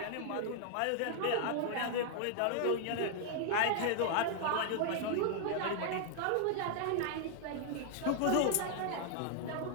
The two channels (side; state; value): both; different; correlation 0.00